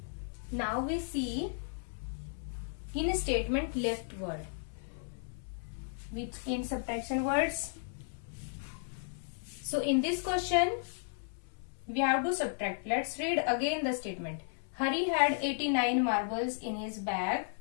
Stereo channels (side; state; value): right; silent; 55 dB below the other